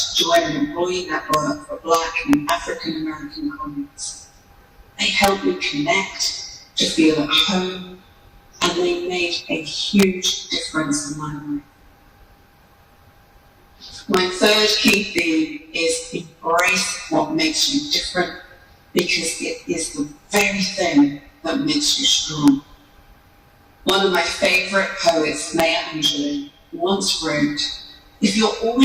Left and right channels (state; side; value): identical; both; correlation 1.00